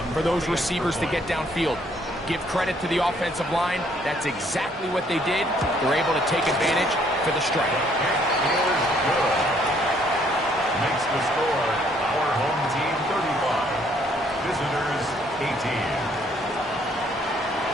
for those receivers to get downfield. Give credit to the offensive line. That's exactly what they did. They're able to take advantage for the strike. Makes the score our home team 35. Visitors 18.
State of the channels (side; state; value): both; normal; correlation 0.65